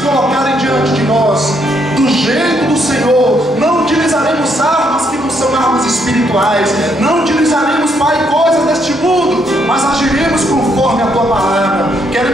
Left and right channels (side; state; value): both; normal; correlation 0.74